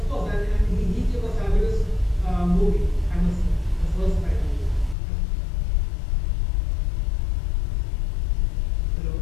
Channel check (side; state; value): right; drops out; at 5.0 s